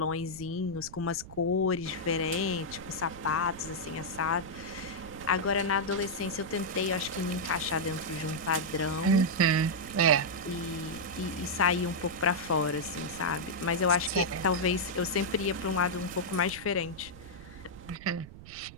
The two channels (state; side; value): noise; right; rumble, 16 dB below the sound